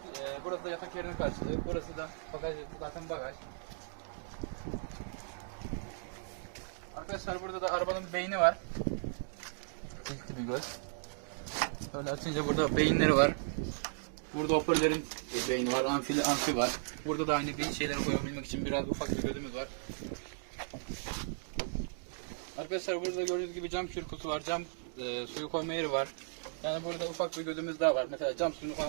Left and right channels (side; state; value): left; silent; digital silence